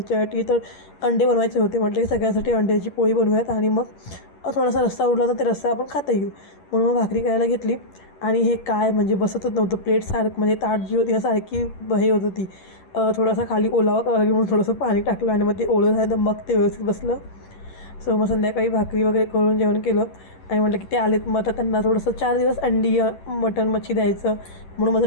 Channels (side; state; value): right; late; 11 ms